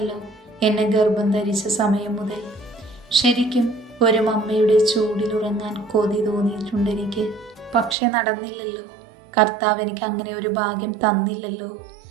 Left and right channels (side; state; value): left; drops out; at 8.0 s